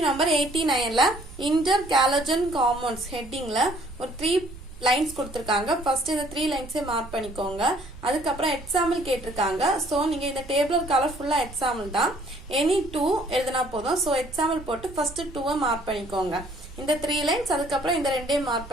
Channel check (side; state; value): right; noise; rumble, 16 dB below the sound